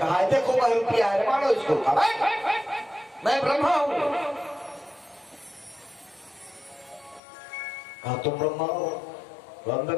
देखो वह रुपया है मानो इसको। मैं ब्रह्मा हूं। कहा तुम ब्रह्मा हो? तो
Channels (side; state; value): right; drops out; at 7.2 s